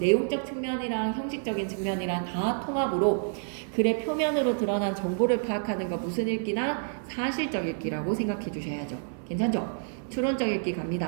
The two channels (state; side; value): silent; left; digital silence